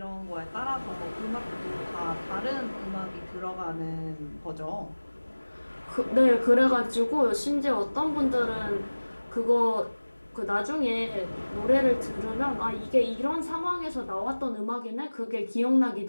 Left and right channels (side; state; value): both; inverted; correlation -1.00